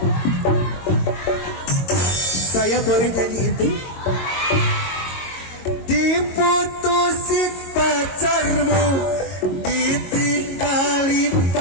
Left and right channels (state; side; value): late; right; 22 ms